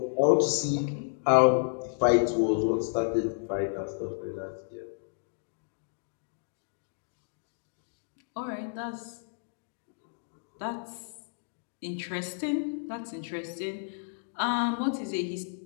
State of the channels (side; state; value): right; silent; digital silence